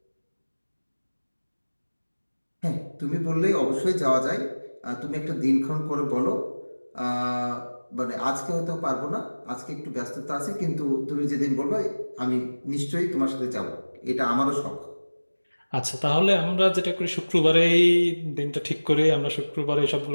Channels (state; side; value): inverted; both; correlation -1.00